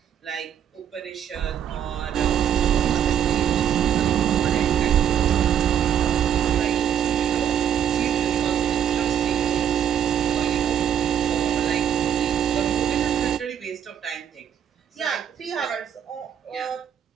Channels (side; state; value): left; quieter; 9.1 dB